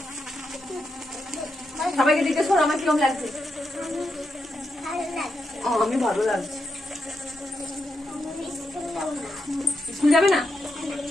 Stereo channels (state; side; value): normal; both; correlation 0.84